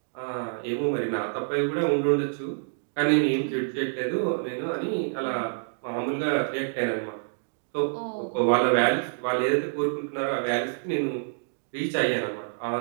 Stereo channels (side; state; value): left; silent; digital silence